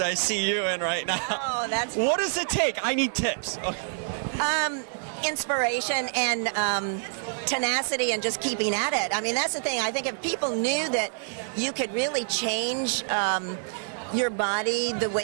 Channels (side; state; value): left; silent; digital silence